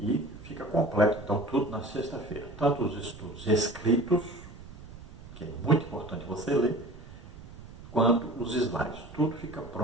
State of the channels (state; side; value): noise; right; rumble, 16 dB below the sound